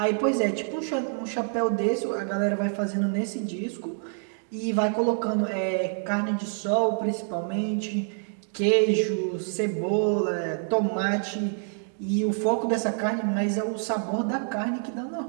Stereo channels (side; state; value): left; silent; 55 dB below the other